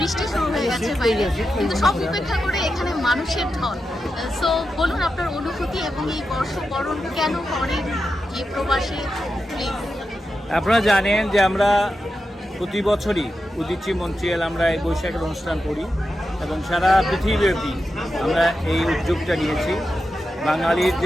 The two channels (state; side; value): normal; both; correlation 0.89